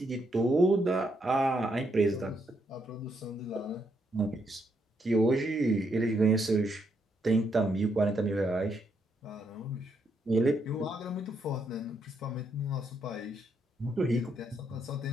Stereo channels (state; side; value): normal; both; correlation 0.76